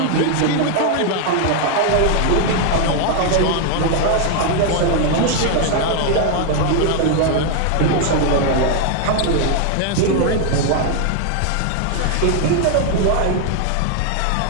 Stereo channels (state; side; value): different; both; correlation 0.00